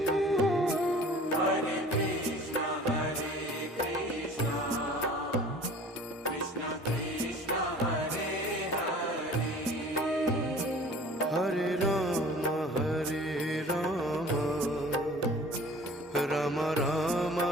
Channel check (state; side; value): normal; both; correlation 0.46